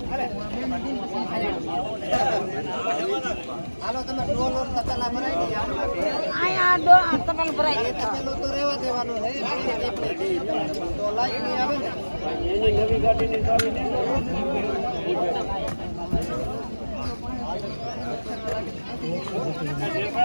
હાલો તમે ડોલ ઓર તતલા ભરાઈ દે આયા ડોલ તતલ ભરાઈ દે તતલો તો રહેવા દેવાનો છે તો લાઈટ ની આવે ને એની નવી ગાડીની ચાવી દે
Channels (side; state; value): both; inverted; correlation -1.00